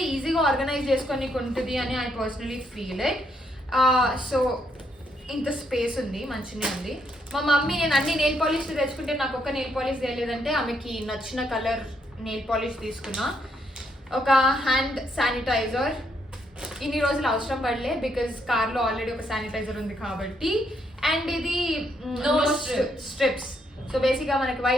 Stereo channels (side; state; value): both; normal; correlation 0.75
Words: ఈజీగా ఆర్గనైజ్ చేసుకొని ఉంటుంది అని I personally feel it. So ఇంత స్పేస్ ఉంది, మంచిగా ఉంది. మా మమ్మీ నేను అన్ని నెయిల్ పాలిష్ తెచ్చుకుంటే నాకు ఒక్క నెయిల్ పాలిష్ తెలియదంటే ఆమెకి నచ్చిన కలర్ నెయిల్ పాలిష్ తీసుకున్నా. ఒక హ్యాండ్ శానిటైజర్. ఇన్ని రోజులు అవసరం పడలే బికాజ్ కార్లో ఆల్రెడీ ఒక శానిటైజర్ ఉంది కాబట్టి. అండ్ ఇది స్ట్రిప్స్. సో బేసిక్గా మనకి